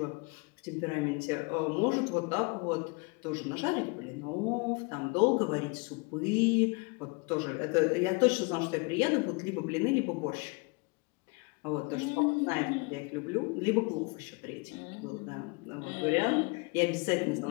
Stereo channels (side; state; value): right; quieter; 29.8 dB